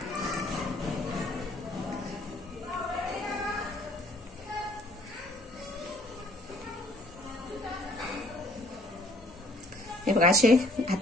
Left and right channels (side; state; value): both; normal; correlation 0.55